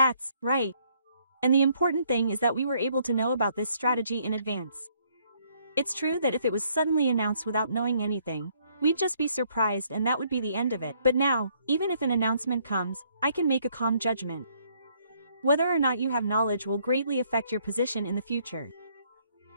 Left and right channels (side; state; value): both; inverted; correlation -0.67